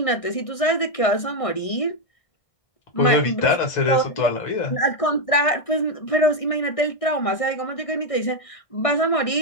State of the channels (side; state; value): right; late; 1.6 ms